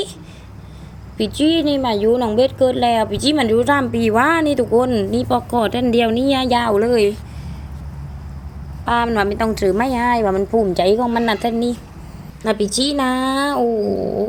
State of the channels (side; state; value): both; identical; correlation 1.00